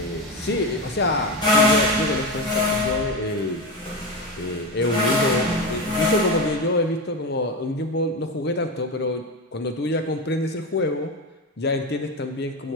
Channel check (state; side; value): normal; both; correlation 0.18